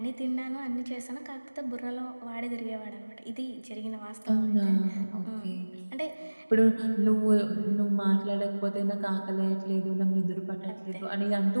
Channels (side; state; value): both; inverted; correlation -1.00